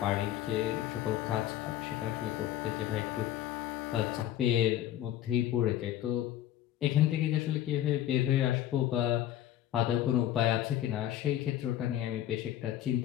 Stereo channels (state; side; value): quieter; right; 12.3 dB